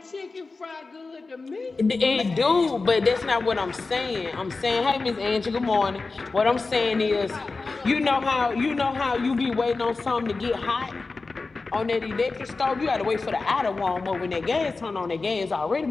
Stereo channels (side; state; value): right; quieter; 3.9 dB